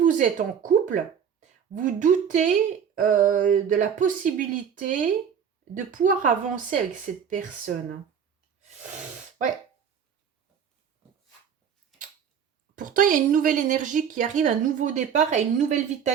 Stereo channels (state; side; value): quieter; left; 7.7 dB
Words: vous êtes en couple, vous doutez de la possibilité de pouvoir avancer avec cette personne. Ouais. Pourtant, il y a une nouvelle énergie qui arrive, un nouveau départ et une nouvelle